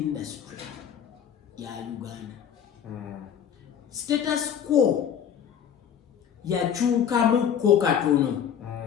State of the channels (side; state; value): right; quieter; 8.6 dB